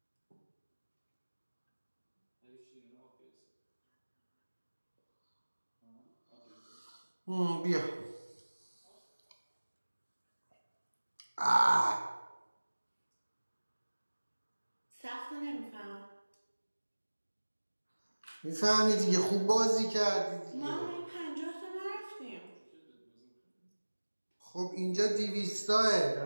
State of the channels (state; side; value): inverted; both; correlation -1.00